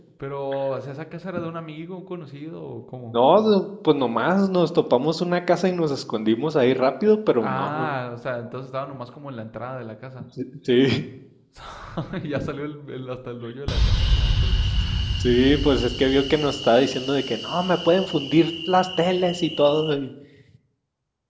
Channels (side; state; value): both; identical; correlation 1.00